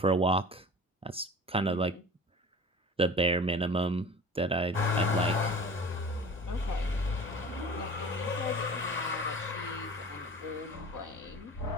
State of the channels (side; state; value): both; normal; correlation 0.40